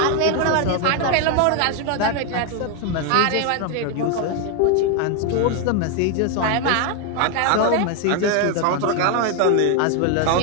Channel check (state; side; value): different; both; correlation 0.01